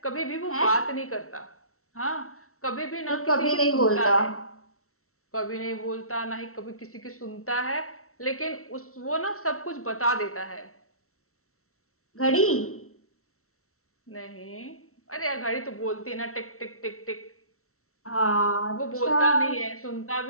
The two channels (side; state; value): right; late; 0.63 ms